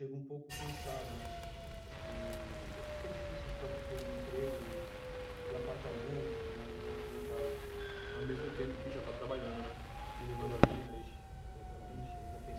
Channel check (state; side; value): identical; both; correlation 1.00